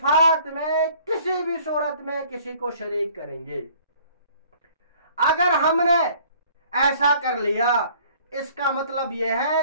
میں کسی بھی صورت میں کسی کو شریک کریں گے۔ اگر ہم نے ایسا کر لیا، اس کا مطلب یہ ہے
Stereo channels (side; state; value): both; inverted; correlation -0.55